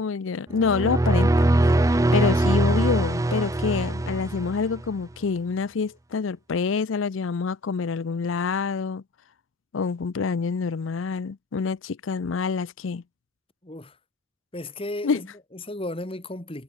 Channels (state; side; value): normal; both; correlation 0.53